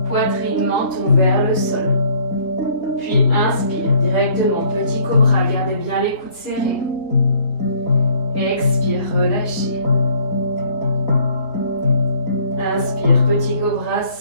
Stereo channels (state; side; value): late; right; 3.7 ms